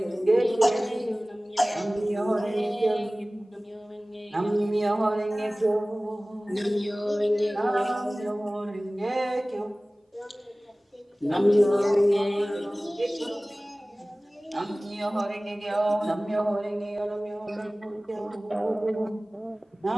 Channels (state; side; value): normal; both; correlation 0.98